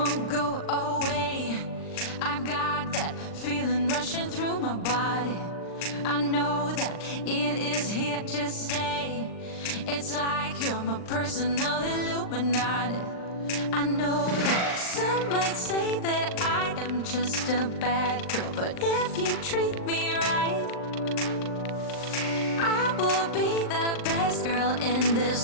go away. I've got that feeling rushing through my body. I know that it is here to stay. It's like you're my personal Illuminati. I know that some might say that I am just a bad girl, but if you treat me right, I will be the best girl in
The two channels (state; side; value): late; right; 39 ms